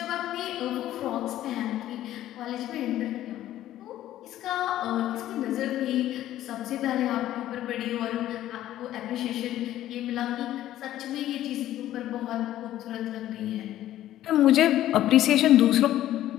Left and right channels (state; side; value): quieter; right; 13.3 dB